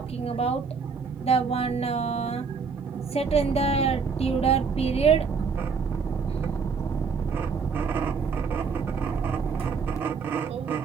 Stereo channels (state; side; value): quieter; left; 5.5 dB